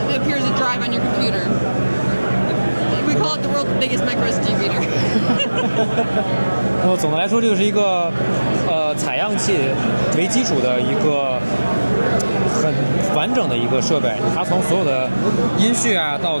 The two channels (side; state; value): both; inverted; correlation -1.00